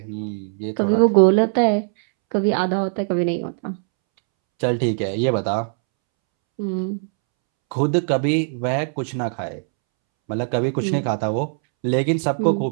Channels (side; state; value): left; silent; 65 dB below the other